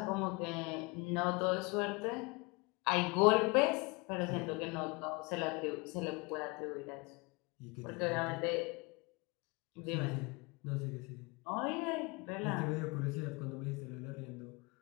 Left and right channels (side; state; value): right; quieter; 27.4 dB